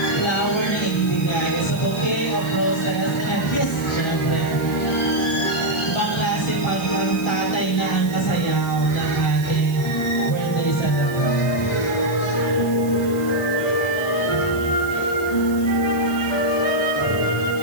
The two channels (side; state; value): right; noise; hiss, 17 dB below the sound